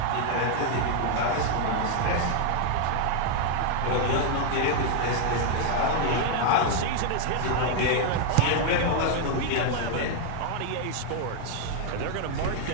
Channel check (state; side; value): different; both; correlation 0.00